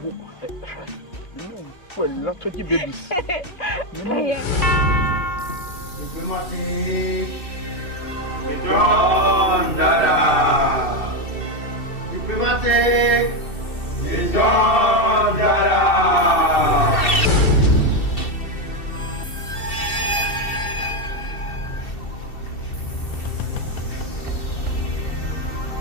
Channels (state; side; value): late; right; 2.7 ms